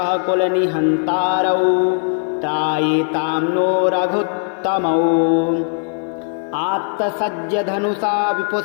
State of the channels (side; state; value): right; silent; 55 dB below the other